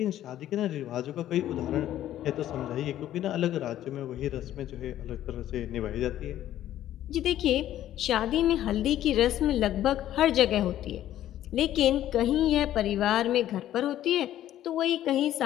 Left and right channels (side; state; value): right; quieter; 12.5 dB